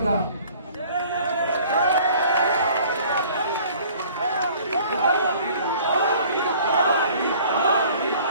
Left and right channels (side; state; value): both; inverted; correlation -0.52